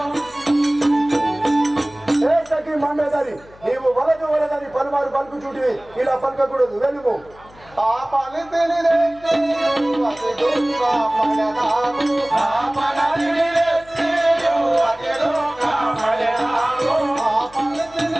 నీవు వలదు వలదని పలుమారు పలుకు చూటివి ఇలా పలకకూడదు వెళ్ళిపో ఆ పని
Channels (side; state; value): left; noise; hum, 24 dB below the sound